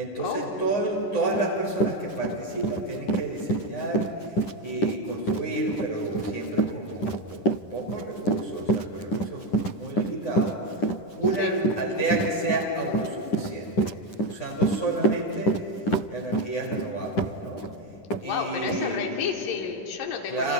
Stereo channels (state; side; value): late; right; 10 ms